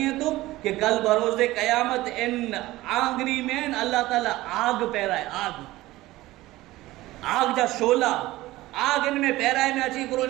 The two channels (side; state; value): left; quieter; 17.6 dB